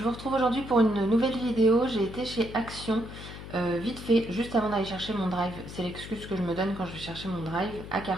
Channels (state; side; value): noise; left; hum, 12 dB below the sound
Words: vous retrouve aujourd'hui pour une nouvelle vidéo. J'ai été chez Action, vite fait, juste avant d'aller chercher mon drive. C'est l'excuse que je me donne quand je vais chercher mon drive à